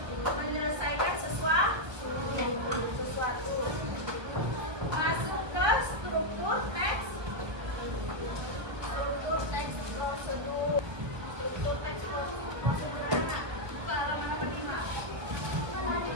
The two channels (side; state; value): left; late; 1.5 ms